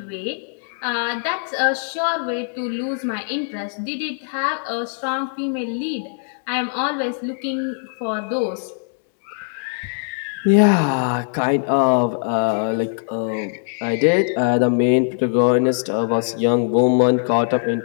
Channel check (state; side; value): silent; right; digital silence